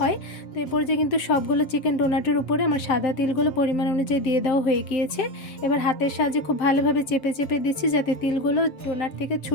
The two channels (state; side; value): late; right; 7.7 ms